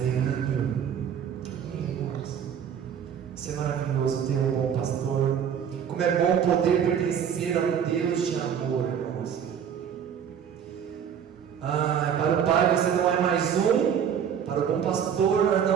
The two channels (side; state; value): left; quieter; 8.2 dB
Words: Isso é maravilhoso, ter um bom pastor. Como é bom poder pertencer a um Deus de amor, irmãos. Para o Pai você não é mais um, para o bom pastor nós